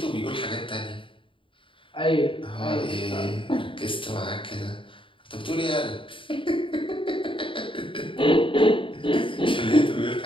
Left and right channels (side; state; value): right; late; 0.25 ms